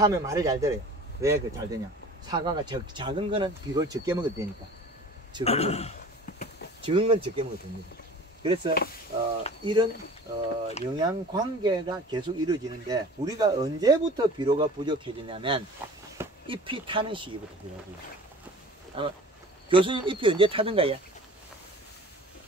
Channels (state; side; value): normal; both; correlation 0.43